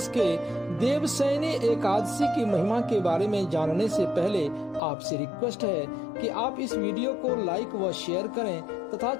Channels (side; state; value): right; drops out; at 4.8 s